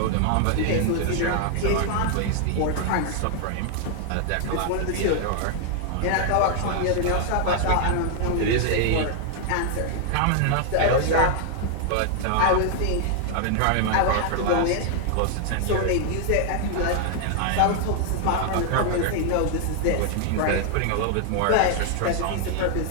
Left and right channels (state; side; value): different; both; correlation 0.00